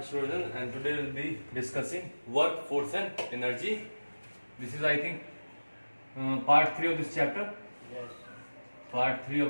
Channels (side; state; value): both; inverted; correlation -1.00